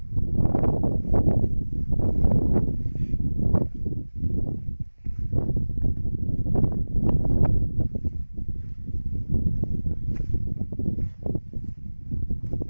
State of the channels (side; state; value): both; inverted; correlation -1.00